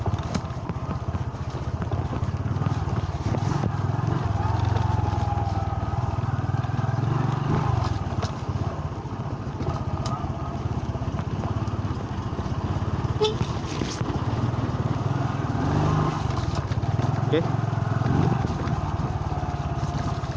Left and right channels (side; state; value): both; identical; correlation 1.00